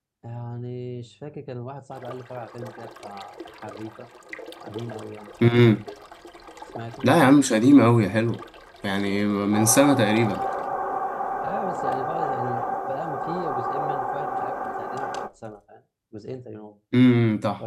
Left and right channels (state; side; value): identical; both; correlation 1.00